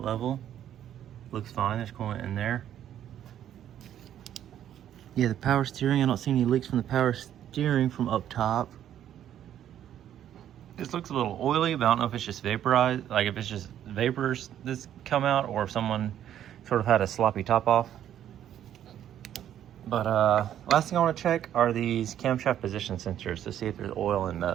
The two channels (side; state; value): left; quieter; 10.7 dB